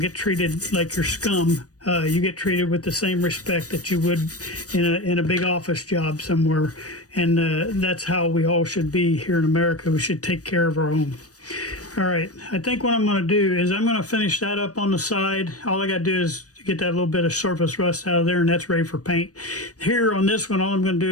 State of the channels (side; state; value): right; late; 0.66 ms